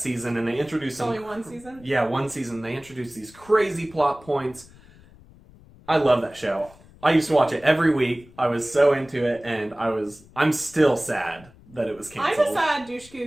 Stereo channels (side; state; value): left; noise; rumble, 24 dB below the sound